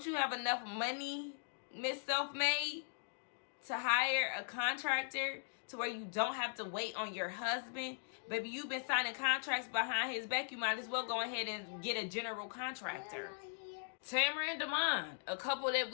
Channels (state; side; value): silent; right; digital silence